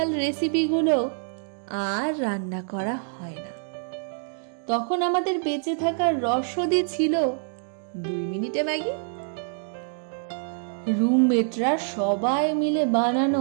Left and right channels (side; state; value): left; silent; digital silence